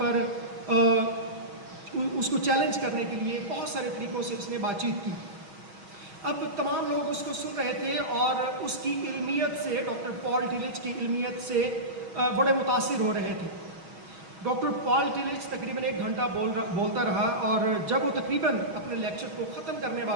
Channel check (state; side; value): late; left; 6.3 ms